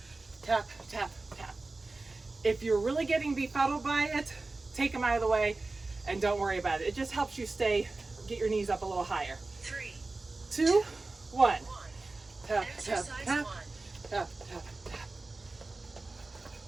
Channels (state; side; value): quieter; left; 3.4 dB